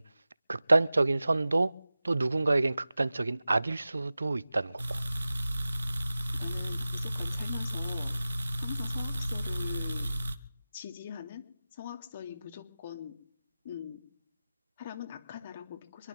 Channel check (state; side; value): inverted; both; correlation -0.96